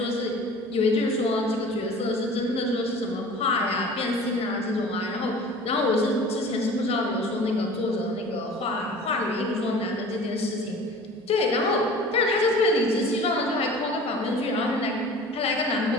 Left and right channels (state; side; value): normal; both; correlation 0.43